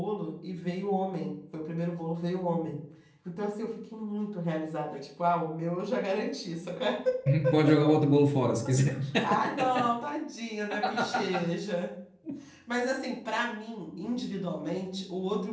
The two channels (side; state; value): both; identical; correlation 1.00